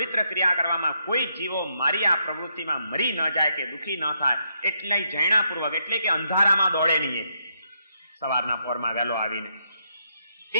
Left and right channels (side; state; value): both; inverted; correlation -0.78